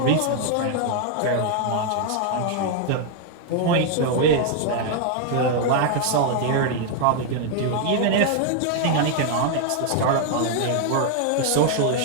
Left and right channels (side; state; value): both; different; correlation 0.00